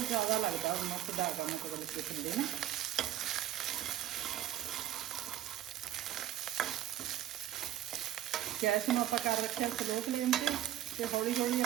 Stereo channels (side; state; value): left; quieter; 12.3 dB